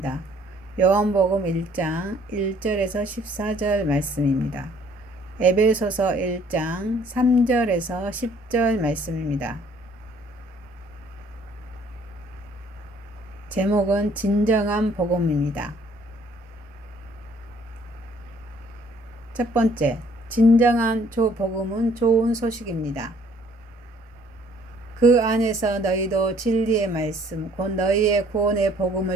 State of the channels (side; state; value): both; normal; correlation 0.60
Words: 요한복음 1장 1절에서 14절 말씀입니다. 에베소서 1장 3절에서 10절 말씀입니다. 제목은 진정한 복음입니다. 첫 번째, 진정한 복음은 좋은 소식입니다. 그 안에서 너희도 진리의 말씀, 곧 너희의 구원의